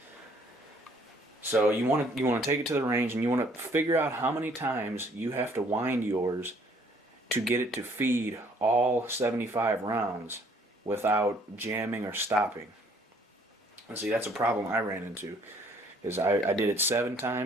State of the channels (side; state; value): both; normal; correlation 0.61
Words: So you want to take it to the range, and you want to figure out how many times you have to wind yours to get it to feed all 75 rounds without jamming or stopping. And see, that's a problem I ran into, because I did it 7